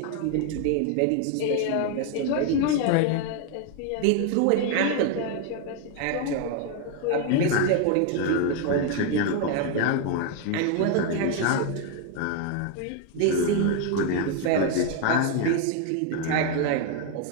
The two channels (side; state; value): both; different; correlation 0.01